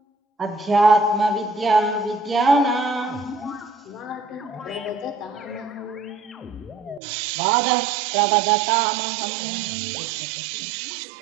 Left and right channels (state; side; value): drops out; left; at 7.0 s